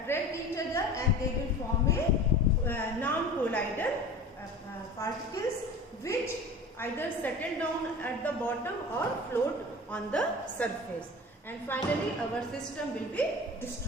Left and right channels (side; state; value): both; normal; correlation 0.37